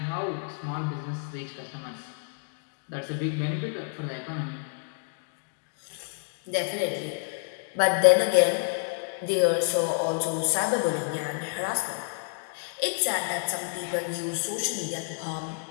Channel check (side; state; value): right; silent; 59 dB below the other